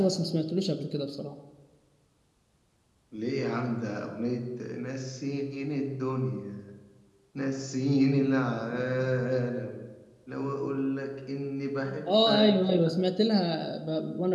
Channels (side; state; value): both; identical; correlation 1.00